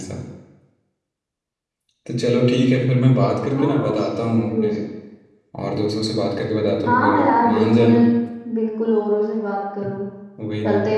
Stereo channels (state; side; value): identical; both; correlation 1.00